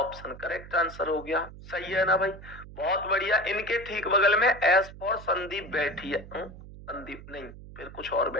करेक्ट आंसर हो गया। सही है ना भाई? बहुत बढ़िया। इनके ठीक बगल में एस फॉर संदीप बैठी है। संदीप नहीं, फिर कुछ और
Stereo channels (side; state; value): right; noise; hum, 16 dB below the sound